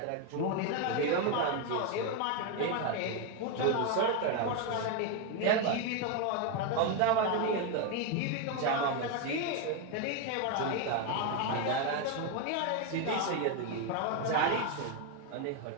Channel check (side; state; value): both; different; correlation 0.02